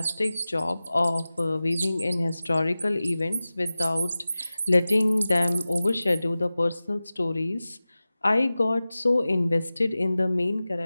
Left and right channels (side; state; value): both; inverted; correlation -0.96